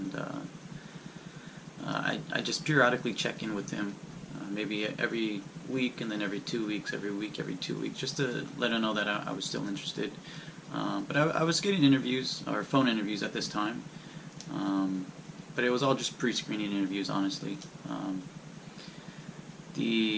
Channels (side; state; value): both; identical; correlation 1.00